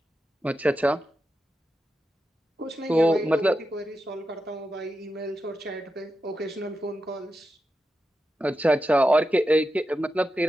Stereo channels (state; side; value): normal; both; correlation 0.89